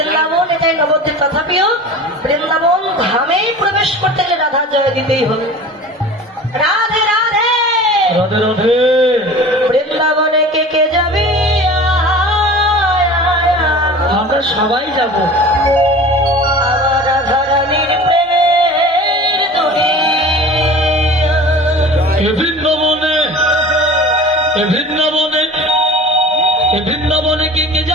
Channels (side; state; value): both; normal; correlation 0.39